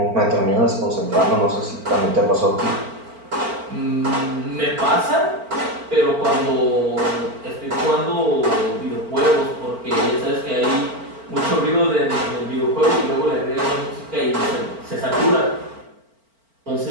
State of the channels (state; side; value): late; left; 4.4 ms